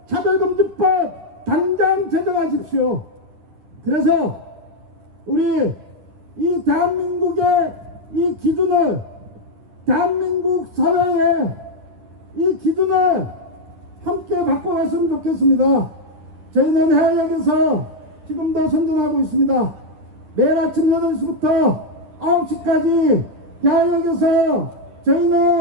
차별금지법 당장 제정하십시오. 그래서 우리 이 대한민국의 이 기준을 대한민국 사회에 이 기준을 함께 바꿔갔으면 좋겠습니다. 저희는 해외역에서 지금도 선전하고 있습니다. 매일 아침 8시부터 9시까지 해외역에서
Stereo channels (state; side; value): late; left; 10 ms